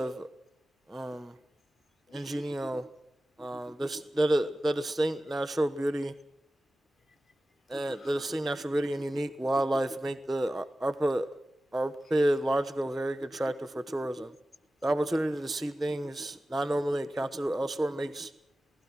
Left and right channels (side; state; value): both; normal; correlation 0.95